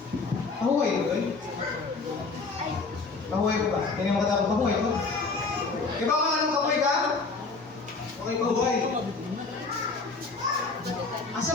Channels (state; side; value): quieter; right; 4.1 dB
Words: Pahuway ko doon? Pahuway ko ba? Hindi mo katapos pahuway ko? Di ba kung anong pahuway ka? Okay, pahuway. Asa